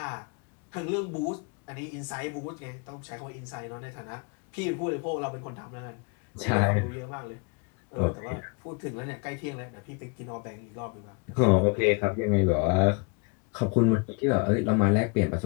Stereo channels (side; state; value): right; quieter; 33.9 dB